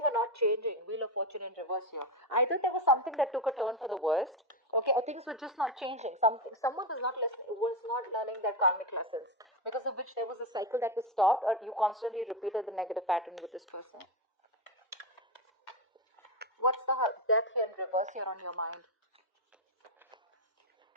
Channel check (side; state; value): both; normal; correlation 0.11